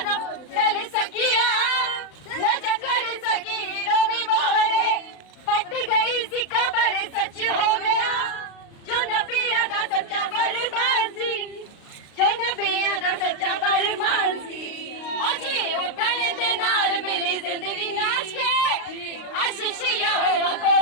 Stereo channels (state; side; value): late; right; 35 ms